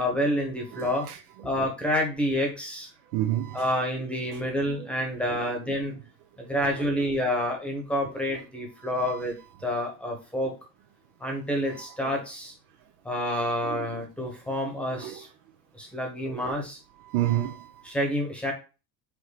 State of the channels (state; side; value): normal; both; correlation 0.40